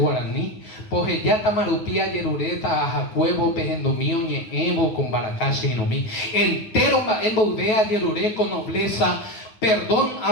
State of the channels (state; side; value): late; right; 9.2 ms